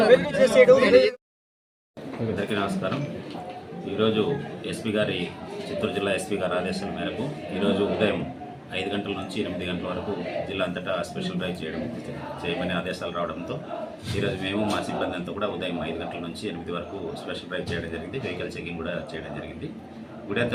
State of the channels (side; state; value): both; identical; correlation 1.00